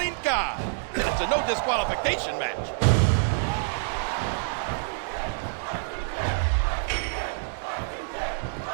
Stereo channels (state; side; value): silent; left; digital silence